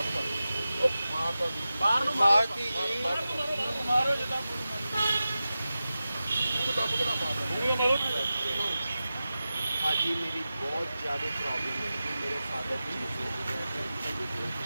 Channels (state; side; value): inverted; both; correlation -0.94